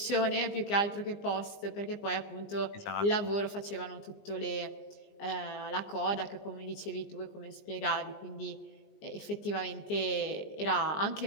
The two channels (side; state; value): right; late; 20 ms